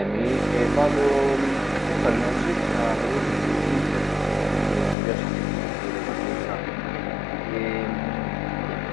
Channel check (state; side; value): drops out; right; at 5.0 s